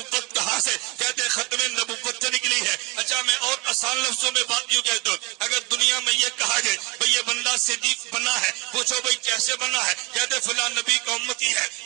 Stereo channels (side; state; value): left; quieter; 24.2 dB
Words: کہاں سے, کہتے ختم نبوت سے نکلی ہے. اچھا میں اور آسان لفظوں میں بات یوں کہتا ہوں, اگر دنیا میں یہ کہا جائے بھئی یہ بندہ صدیق بنا ہے, پوچھو بھئی کیسے بنا ہے, کہتے فلاں نبی کا امتی ہے,